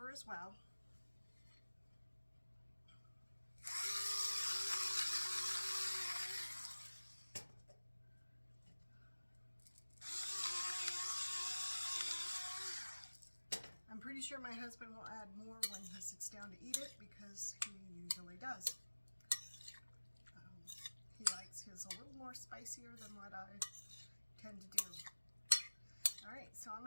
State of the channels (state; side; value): inverted; both; correlation -1.00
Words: as well. I'm pretty sure my husband will add more when he sits down to eat it, because he usually does. He likes his a little more spicier than what I tend to do. All right, so I'm